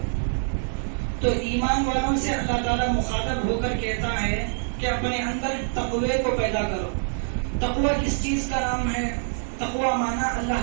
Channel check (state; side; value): silent; left; digital silence